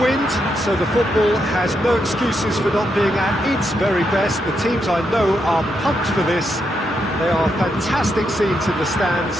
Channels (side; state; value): both; normal; correlation 0.81